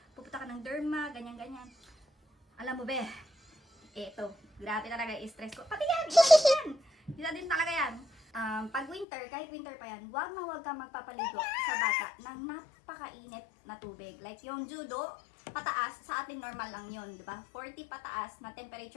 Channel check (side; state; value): right; drops out; at 9.1 s